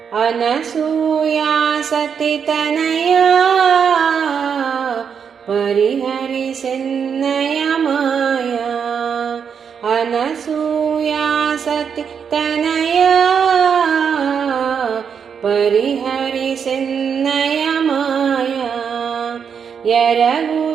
अनसूया सती तनया परिहरि सिन्नय माया अनसूया सती तनया परिहरि सिन्नय माया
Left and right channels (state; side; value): quieter; left; 7.0 dB